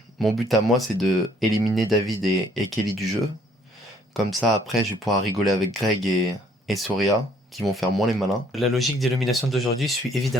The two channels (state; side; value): normal; both; correlation 0.63